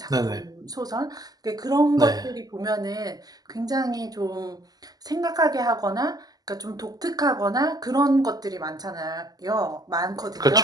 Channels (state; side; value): late; left; 0.18 ms